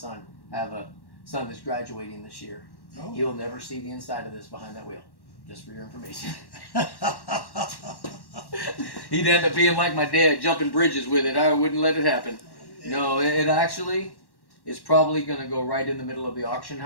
I have a son that's graduating this year. Oh. He'll never see the inside of this behind that wheel. Just for your information. He'd end up being like my dad, jumping bridges with it. I wouldn't let it happen. No, it actually is probably going to go right in the middle of the auction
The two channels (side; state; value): right; late; 1.1 ms